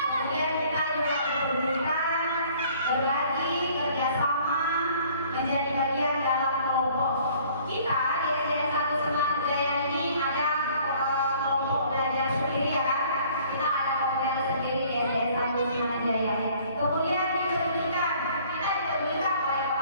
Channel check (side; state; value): both; inverted; correlation -0.56